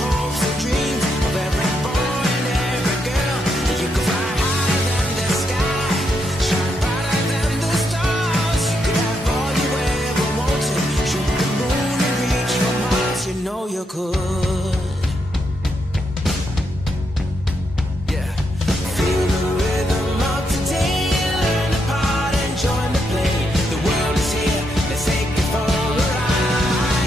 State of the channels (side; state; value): both; normal; correlation 0.80